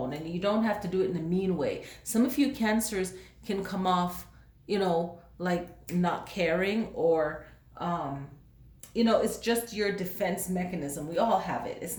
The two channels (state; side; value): identical; both; correlation 1.00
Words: and you don't have to do it in a mean way. Some of you Cancers can come off, like not caring or, it's just your defense mechanism. We all have it. It's